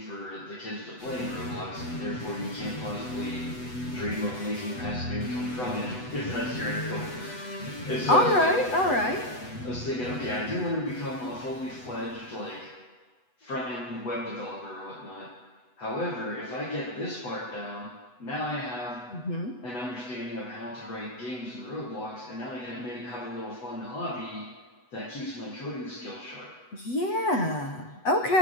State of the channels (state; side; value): late; right; 8.1 ms